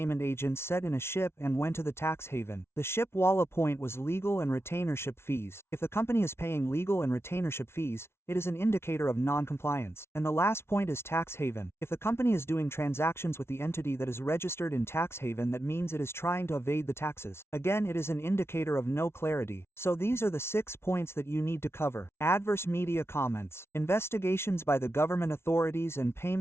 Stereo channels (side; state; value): right; late; 0.12 ms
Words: agent set in a ship and went to the tax haven. The ship Walla point was legal and retainership fees. If the company is paying legal and retainership fees, it is an indicator of non-compliance. And the last point is tax haven. If the company is doing transactions with the entity that is registered in tax haven, that means it is trying to evade the taxes. Again, it is an indicator of no clarity. So these are the 6 points that you need to cover. Adverse media comments, investigations by the government authorities, and